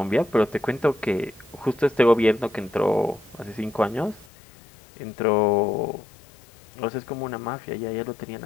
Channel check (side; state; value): right; drops out; at 4.2 s